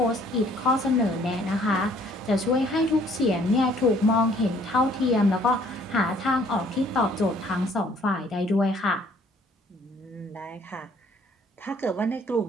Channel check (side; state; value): both; normal; correlation 0.60